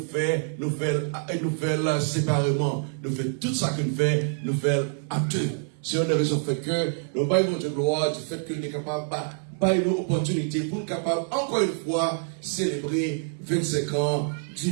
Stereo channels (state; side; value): silent; left; 59 dB below the other